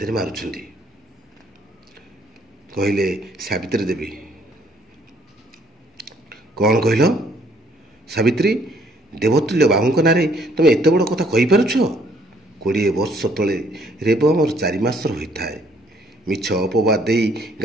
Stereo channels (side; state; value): both; normal; correlation 0.64